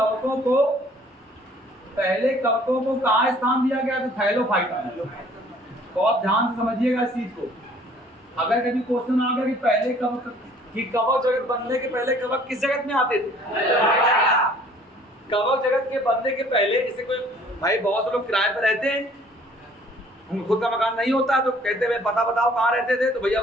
को कहाँ स्थान दिया गया? तो थैलोफाइटा। बहुत ध्यान से समझिएगा इस चीज को। अगर कभी क्वेश्चन आ गया कि पहले कवक जगत बनने के पहले कवक किस जगत में आते थे? कवक जगत के बनने के पहले, जैसे कोई भाई बहुत से लोग किराए पर रहते हैं, खुद का मकान नहीं होता है, तो कहते हैं पता बताओ कहाँ रहते थे? तो भैया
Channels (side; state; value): both; normal; correlation 0.56